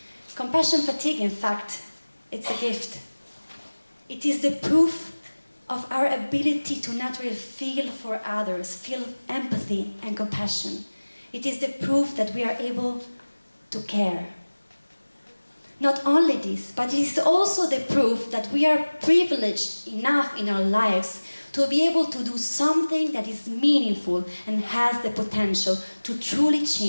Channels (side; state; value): both; inverted; correlation -1.00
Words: Compassion fatigue, in fact, it's a gift. It is the proof of our ability to naturally feel for others, feel empathy and compassion. It is the proof that we are able to care. Not only this, but it is also the proof that we are privileged enough in our lives to be able to do something that is meaningful and has the potential to truly